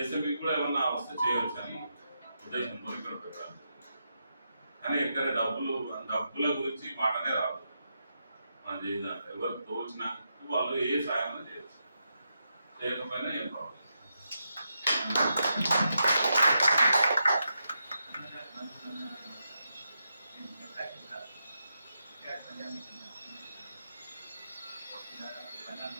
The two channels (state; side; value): inverted; both; correlation -0.85